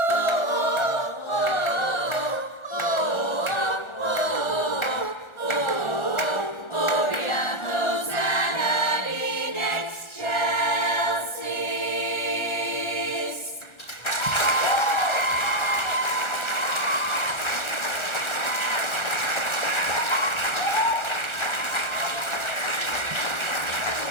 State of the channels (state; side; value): late; right; 1.4 ms